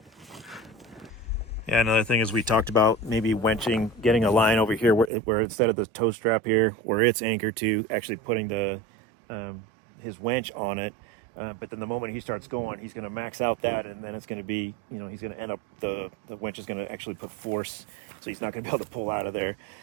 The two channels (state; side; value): drops out; left; at 5.1 s